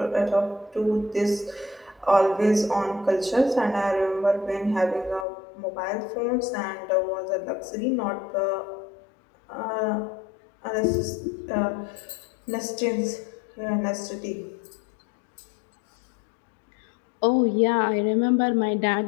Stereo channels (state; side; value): drops out; right; at 5.2 s